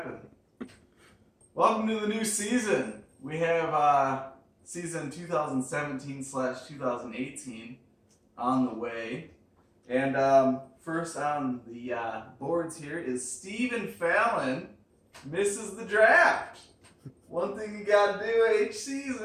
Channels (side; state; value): both; identical; correlation 1.00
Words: Welcome to the new season. We have season 2017/2018 on the way. And first on the boards here is Stephen Fallon misses the draft. One thing you got to do each